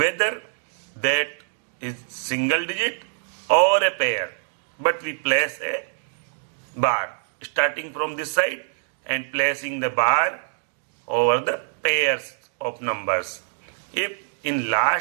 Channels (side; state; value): left; silent; digital silence